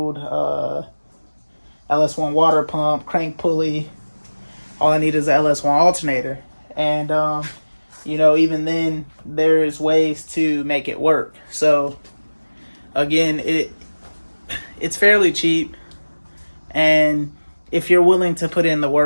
LS1 water pump, crank pulley. All I need is the LS1 alternator. And, even then, there's ways to make it work. So, again, it's fairly cheap. And if you're willing to put in the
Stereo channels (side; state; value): both; inverted; correlation -1.00